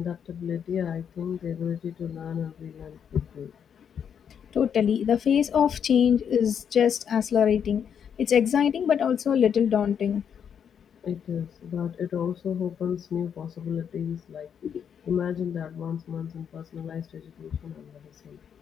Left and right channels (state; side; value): quieter; right; 7.9 dB